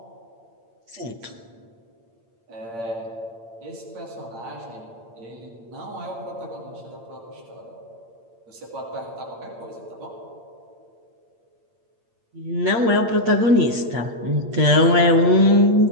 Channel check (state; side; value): late; left; 8.7 ms